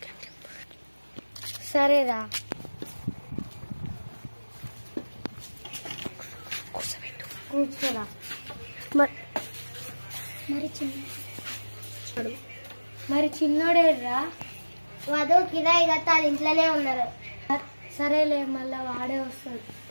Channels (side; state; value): both; inverted; correlation -1.00